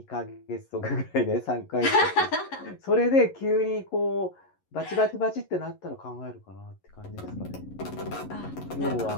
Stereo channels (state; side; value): late; right; 11 ms